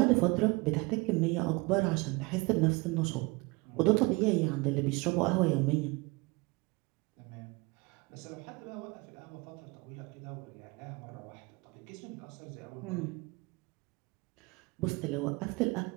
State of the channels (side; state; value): left; quieter; 25.5 dB